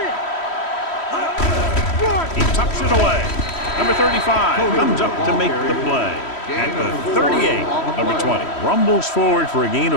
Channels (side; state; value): right; late; 3.1 ms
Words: it. He tucks it away. Number 35 comes up to make the play. At the 38, number 20 rumbles forward for a gain